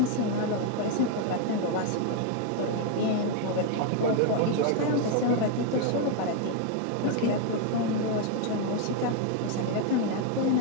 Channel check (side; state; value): both; different; correlation 0.01